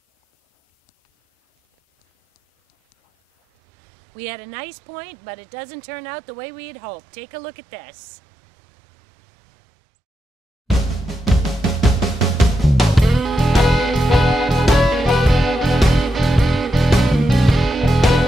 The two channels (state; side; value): normal; both; correlation 0.86